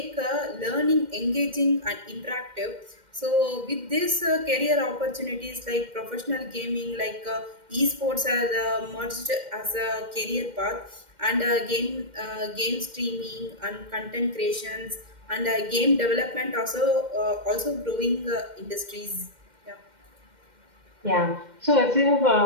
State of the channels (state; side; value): late; left; 2.1 ms